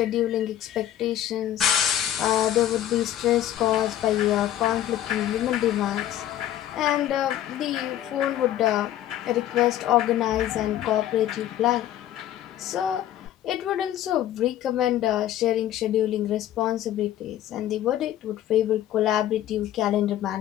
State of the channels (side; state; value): right; quieter; 12.2 dB